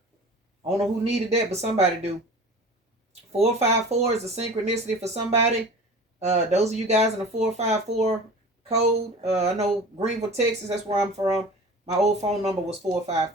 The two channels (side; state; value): both; normal; correlation 0.39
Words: don't know who needed that, but somebody do. 454 is a synchronicity for somebody. Those of you guys in the 454 code. I know Greenville, Texas. That's where I'm from. My old phone number was